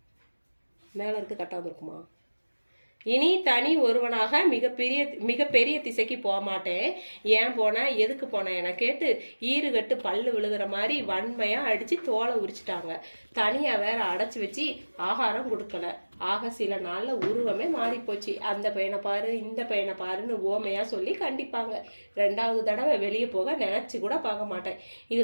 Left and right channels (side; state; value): both; inverted; correlation -1.00